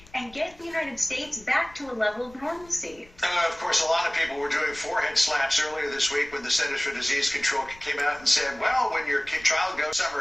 and get the United States back to a level of normalcy. Of course, a lot of people were doing forehead slaps earlier this week when the Centers for Disease Control came out and said, well, when your child goes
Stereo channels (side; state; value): left; noise; rumble, 24 dB below the sound